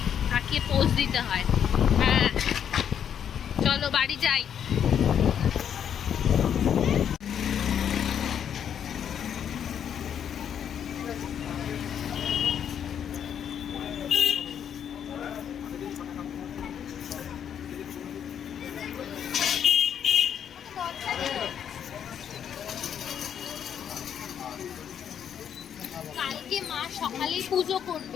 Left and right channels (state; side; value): quieter; right; 8.7 dB